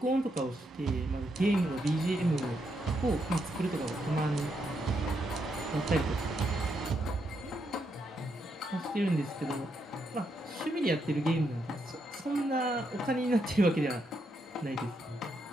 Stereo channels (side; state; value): both; normal; correlation 0.80